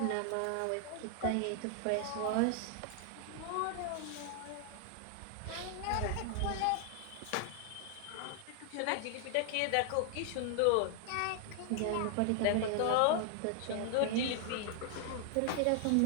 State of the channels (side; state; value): both; different; correlation 0.00